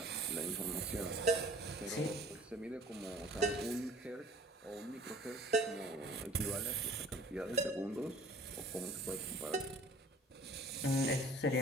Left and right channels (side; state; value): both; normal; correlation 0.50